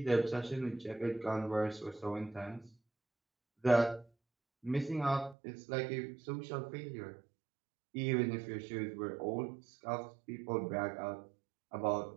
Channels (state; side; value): drops out; left; at 5.4 s